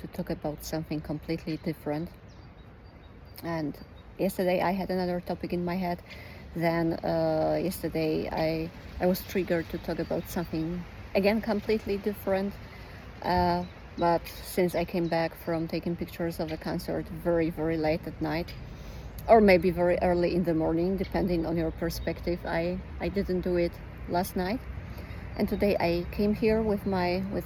talk about something completely different. And yesterday I had another topic in my head. Then yesterday I was triggered to talk about something again completely different. Uh, but since I came back from taking pictures of a concert very late at night, or maybe very early in the morning, depending on your perspective, I didn't do it last night. And today I came here with my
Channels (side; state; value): both; identical; correlation 1.00